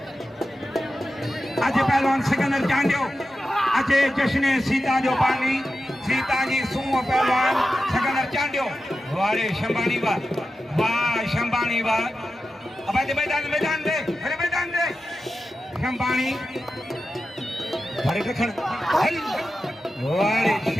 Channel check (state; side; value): normal; both; correlation 0.92